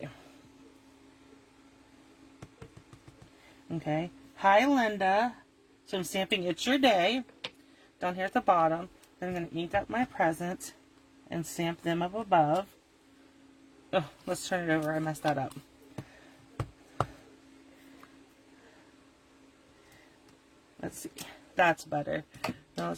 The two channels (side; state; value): both; identical; correlation 1.00